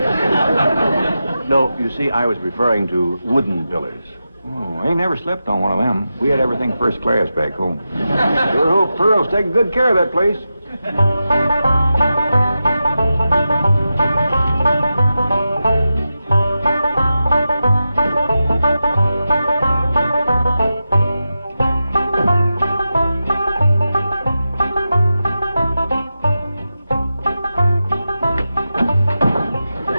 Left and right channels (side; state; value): both; inverted; correlation -0.91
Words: No, you see, I was referring to wooden pillars. Oh, I ain't never slept on one of them. We had everything first class back home. Sure hope Pearl's taking good care of that place.